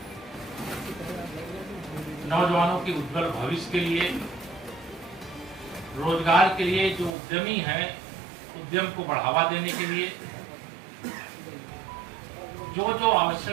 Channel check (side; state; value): left; drops out; at 7.1 s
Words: नौजवानों के उज्जवल भविष्य के लिए, रोजगार के लिए, जो उद्यमी हैं उद्यम को बढ़ावा देने के लिए जो जो